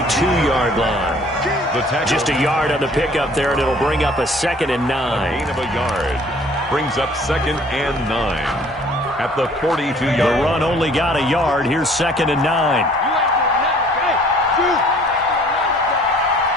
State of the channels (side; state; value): both; normal; correlation 0.55